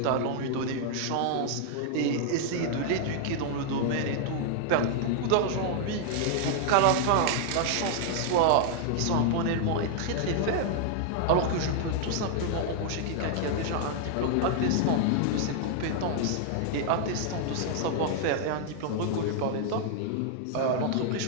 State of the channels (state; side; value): different; both; correlation 0.00